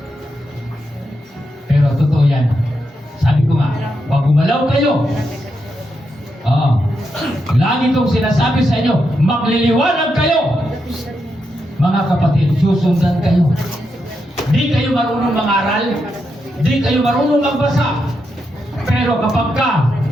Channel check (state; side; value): normal; both; correlation 0.84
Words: Pero totoo yan. Sabi ko nga, pag gumalaw kayo, lagi kong sinasabi sa inyo, magliliwanag kayo. Mga kapatid, susundan kayo. Di kayo marunong mangaral, di kayo marunong magbasa. Pero kapag ka